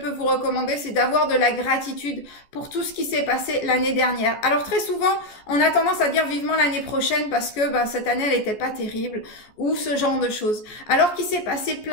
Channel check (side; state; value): right; late; 14 ms